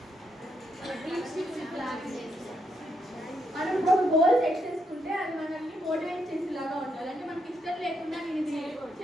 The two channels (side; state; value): both; normal; correlation 0.78